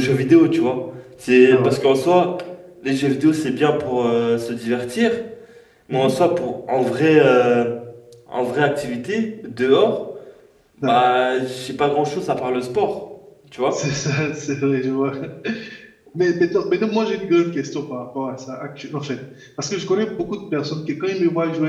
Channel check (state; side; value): identical; both; correlation 1.00